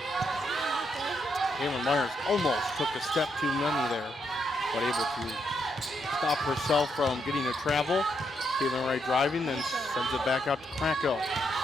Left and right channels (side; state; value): both; normal; correlation 0.78